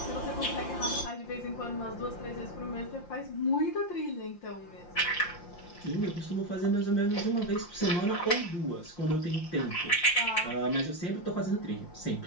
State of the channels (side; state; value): right; late; 5.7 ms